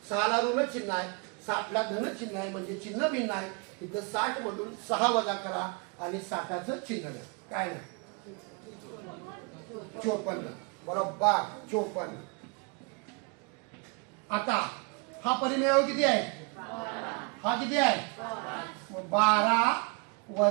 6 ला ऋण चिन्ह आहे, 60 ला धन चिन्ह आहे, म्हणजे चिन्ह भिन्न आहे. तिथं 60 मधून 6 वजा करा आणि 60चं चिन्ह द्या. काय नाही 54. बरोबर 54. आता हा परिमेय किती आहे? हा किती आहे? 12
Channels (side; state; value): left; quieter; 32.9 dB